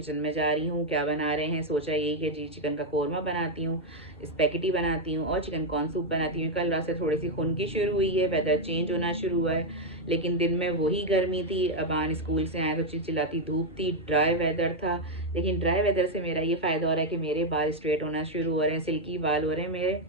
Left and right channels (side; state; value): both; normal; correlation 0.02